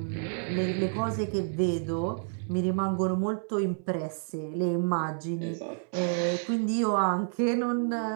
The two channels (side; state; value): left; silent; 58 dB below the other